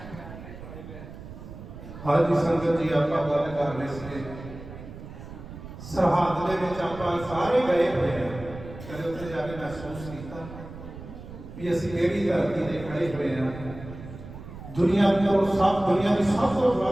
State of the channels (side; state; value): right; noise; rumble, 13 dB below the sound